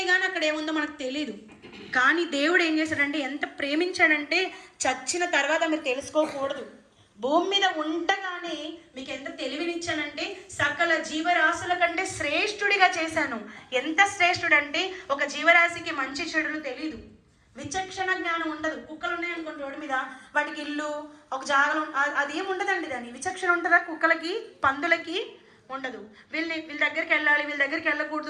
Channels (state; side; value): identical; both; correlation 1.00